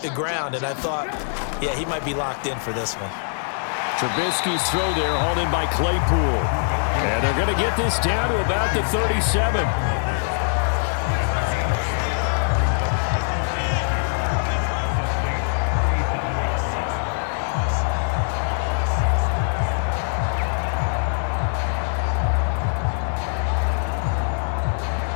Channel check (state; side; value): silent; right; digital silence